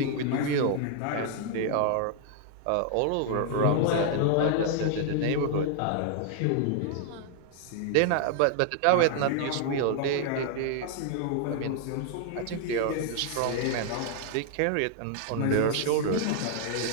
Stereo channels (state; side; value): different; both; correlation 0.00